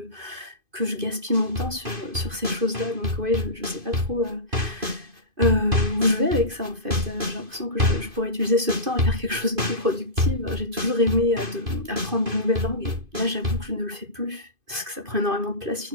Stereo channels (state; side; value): late; left; 2.5 ms